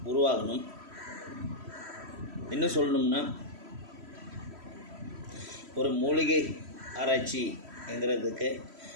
உருவாகணும். இன்னும் சொல்லணும்னா, ஒரு மூலிகை ஆராய்ச்சிங்கிறதுக்கு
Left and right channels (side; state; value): left; late; 3.1 ms